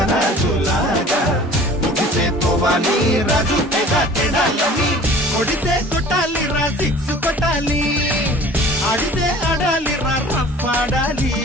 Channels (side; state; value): both; normal; correlation 0.46